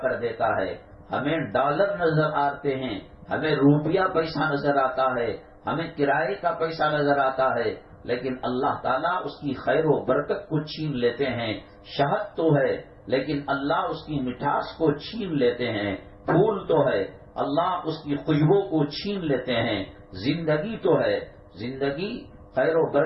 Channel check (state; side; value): identical; both; correlation 1.00